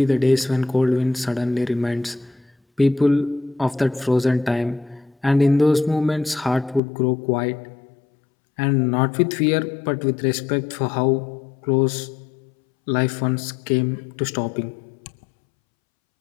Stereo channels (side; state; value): right; drops out; at 6.8 s